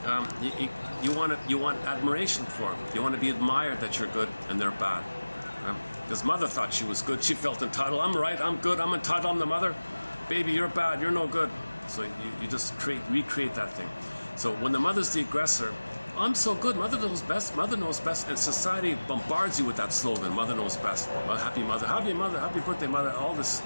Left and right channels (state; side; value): inverted; both; correlation -1.00